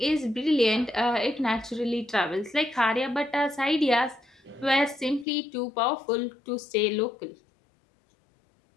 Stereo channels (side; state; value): right; drops out; at 5.2 s